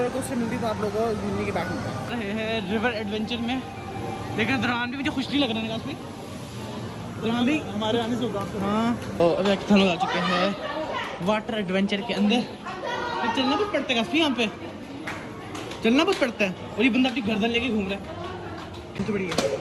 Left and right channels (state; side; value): identical; both; correlation 1.00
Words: कोस्टर मिलती तो आप लोगों को घूमने की बात मिलता है। रिवर एडवेंचर में लेकिन दौरान भी मुझे खुश नहीं लग रहा है काफी। दौरान भी हमारे आने से होगा। हाँ तो अभी हम लोग आ चुके हैं वाटर एडवेंचर के अंदर। तो चलना बहुत पड़ता है काफी, यहाँ पे चलना बहुत पड़ता है। और ये बंदा अपनी गर्दन लेके घूम रहा है, तो बड़ी